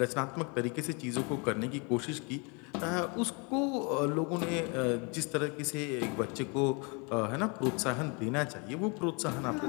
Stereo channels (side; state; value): right; quieter; 32.5 dB